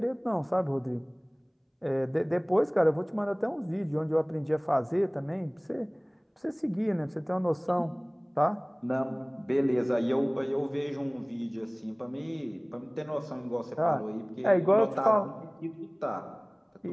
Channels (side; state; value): both; identical; correlation 1.00